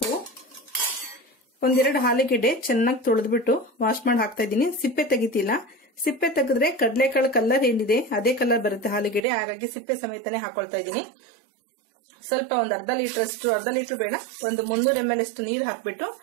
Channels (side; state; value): left; drops out; at 9.2 s